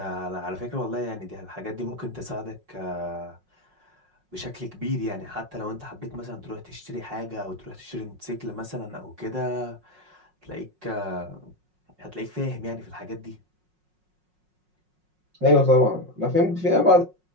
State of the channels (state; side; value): late; left; 5.5 ms